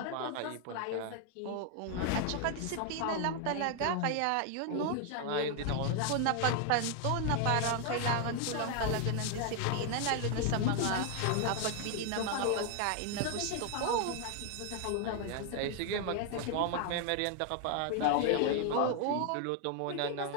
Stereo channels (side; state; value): both; different; correlation 0.00